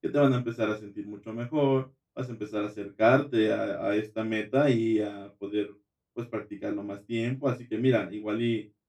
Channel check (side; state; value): both; identical; correlation 1.00